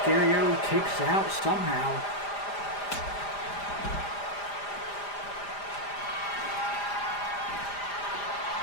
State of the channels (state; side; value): late; right; 5.0 ms